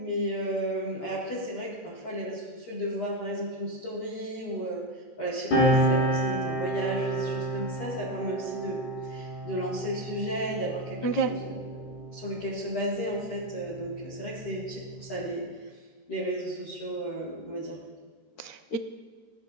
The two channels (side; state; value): right; late; 13 ms